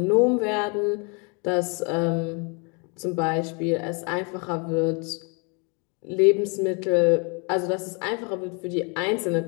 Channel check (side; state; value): right; quieter; 34.0 dB